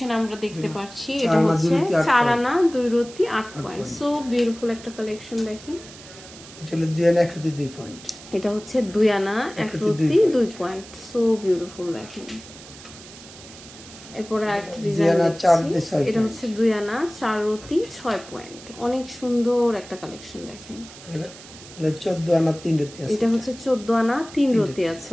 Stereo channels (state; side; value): noise; right; hiss, 18 dB below the sound